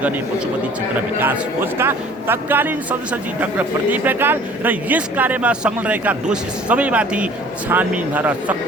गर्ने पशुपति क्षेत्र विकास कोषका तत्कालीन सदस्य डाक्टर प्रदीप ढकाल र यस कार्यमा संलग्न रहेका दोषी सबैमाथि छानबिन भएर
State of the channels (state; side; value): normal; both; correlation 0.50